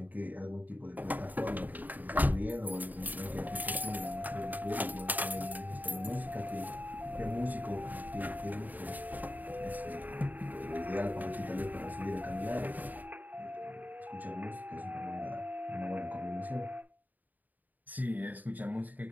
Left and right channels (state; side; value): late; left; 0.083 ms